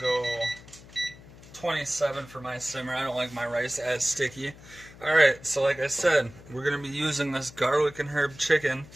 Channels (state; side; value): noise; left; hum, 20 dB below the sound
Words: 27 for my simmer. I don't like my rice as sticky. Alright, so like I said, we're going to be using this garlic and herb chicken.